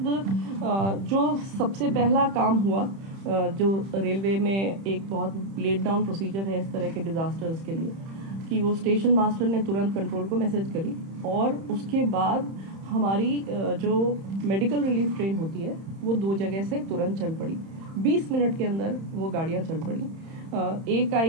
जो सबसे पहला काम हुआ, जो रेलवे में एक बहुत लेट डाउन प्रोसीजर है इस तरह के डिजास्टर्स के लिए, कि वो स्टेशन मास्टर ने तुरंत कंट्रोल को मैसेज करी, और उसके बाद हमारी जो मेडिकल रिलीफ ट्रेन होती है वो 2 जगह से तुरंत चल पड़ी। 20 मिनट के अंदर वो गाड़ियाँ चल पड़ी। एक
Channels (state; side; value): late; left; 31 ms